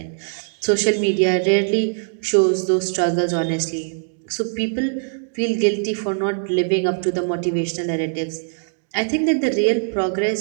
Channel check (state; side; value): silent; left; 65 dB below the other